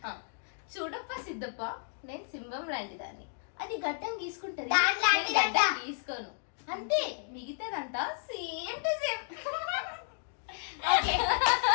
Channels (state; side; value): silent; right; digital silence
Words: చూడప్ప Siddappa నేను సింహం లాంటి దాన్ని అది గడ్డం గీసుకుంటది దాని లాంటిదంట. నేను గడ్డం గీసుకోను అంతే మిగతాదంతా same to same okay